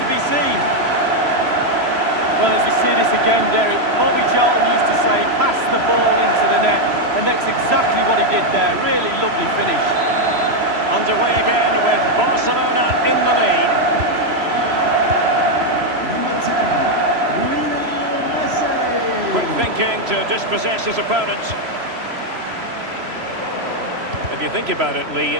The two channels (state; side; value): late; left; 3.0 ms